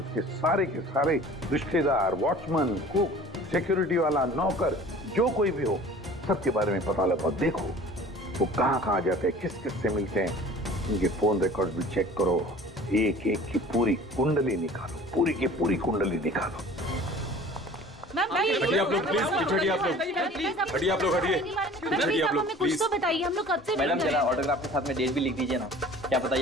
सारे के सारे रिश्तेदार, वॉचमैन, कुक, सिक्योरिटी वाला, नौकर, जो कोई भी हो, सबके बारे में पता लगाओ। देखो वो कहाँ जाते हैं, किस किस से मिलते हैं, उनके फोन रिकॉर्ड भी चेक करो, एक एक की पूरी कुंडली निकालो, पूरी की पूरी कुंडली निकालो। हटिए आप लोग प्लीज, हटिए आप लोग, हटिए आप लोग, हटिए आप लोग कुछ तो बताइए, हम लोग कब से मैडम जरा ऑटोग्राफ के साथ में डेट भी लिख दीजिए ना। क्या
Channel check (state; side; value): normal; both; correlation 0.46